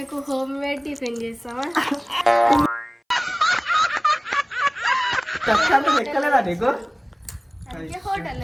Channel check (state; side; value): identical; both; correlation 1.00